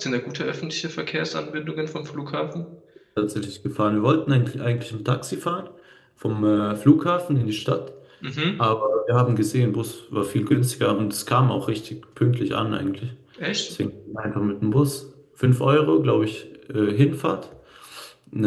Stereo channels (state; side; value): identical; both; correlation 1.00